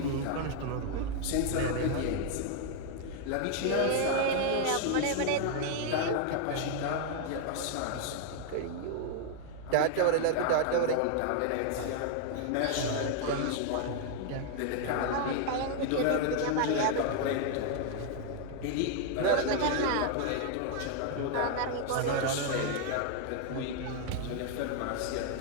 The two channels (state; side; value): different; both; correlation 0.00